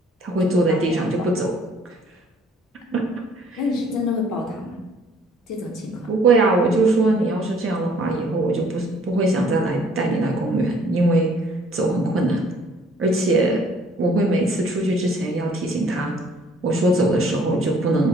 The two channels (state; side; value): normal; both; correlation 0.59